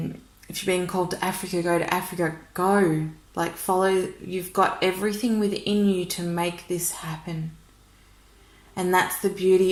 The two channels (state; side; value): identical; both; correlation 1.00